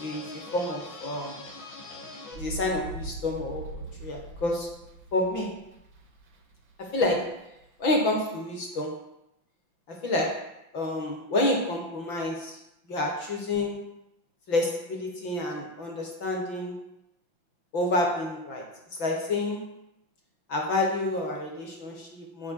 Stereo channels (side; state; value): right; late; 5.9 ms